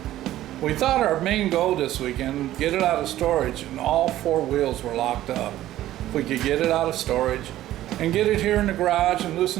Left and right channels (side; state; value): left; quieter; 14.0 dB